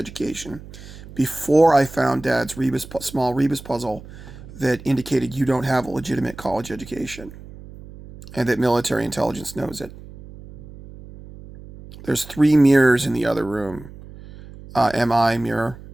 before I found Dad's small rebus puzzle that indicated you don't have a legitimate college education and that military intelligence knows it. There's 3 mirrors in the other room. MI mirror.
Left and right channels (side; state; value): right; noise; hum, 17 dB below the sound